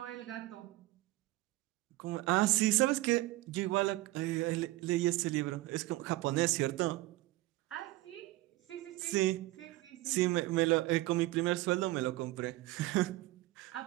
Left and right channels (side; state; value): left; quieter; 18.4 dB